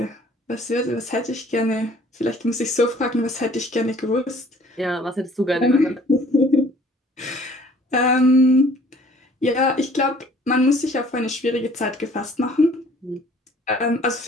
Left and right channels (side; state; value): both; normal; correlation 0.55